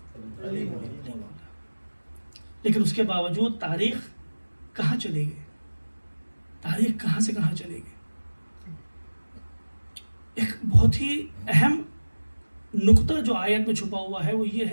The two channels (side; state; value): both; inverted; correlation -1.00